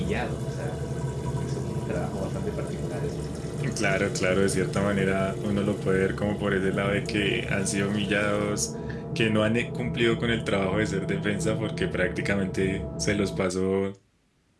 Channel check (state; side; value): identical; both; correlation 1.00